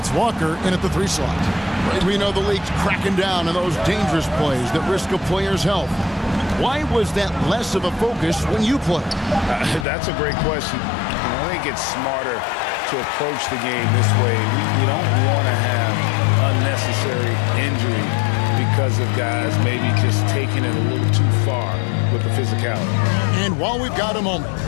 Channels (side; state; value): right; drops out; at 9.9 s